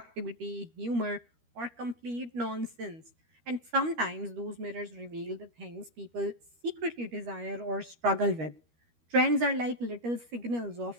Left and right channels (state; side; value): late; left; 13 ms